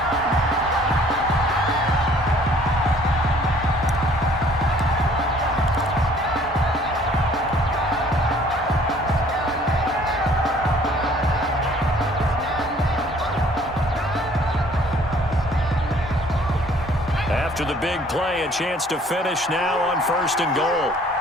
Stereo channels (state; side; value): normal; both; correlation 0.57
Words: After the big play, a chance to finish now on 1st and goal.